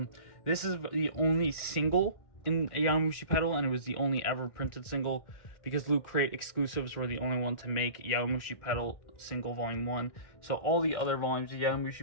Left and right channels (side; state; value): right; late; 1.6 ms